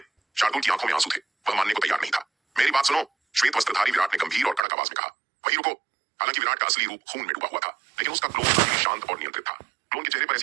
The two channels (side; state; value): left; drops out; at 4.7 s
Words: शार्दुल की आंखों में आंसू थे। वह मानने को तैयार नहीं था। मेरी बात सुनो, श्वेत वस्त्रधारी विराट ने गंभीर और कड़क आवाज में कहा। वहीं रुको। हालांकि विराट का असली रूप खून में डूबा हुआ था, लेकिन उसका क्लोन अभी भी शांत और नियंत्रित था। क्लोन के चेहरे पर